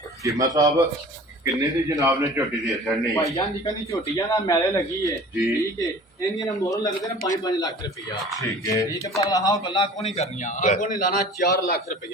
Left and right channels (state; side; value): normal; both; correlation 0.43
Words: ਚੀਮਾ ਸਾਹਿਬ ਕਿੰਨੇ ਦੀ ਜਨਾਬ ਨੇ ਝੋਟੀ ਦੇ ਛੜਨੀ ਭਾਈ ਜਾਨ ਜਿੱਕਨ ਦੀ ਝੋਟੀਆਂ ਨਾ ਮੈਲੇ ਲੱਗੀ ਏ ਜੀ। ਠੀਕ ਹੈ ਇਹਦੀਆਂ ਨਾ ਮੁੱਲ ਲੱਗਦੇ ਨੇ 5-5 ਲੱਖ ਰੁਪਇਆ ਠੀਕ ਹੈ ਠੀਕ ਹੈ ਪਰ ਆਹ ਗੱਲਾਂ ਕੋ ਨਹੀਂ ਕਰਨੀਆਂ ਆਹ ਕੋ ਨਹੀਂ ਲਾਣਾ 4 ਲੱਖ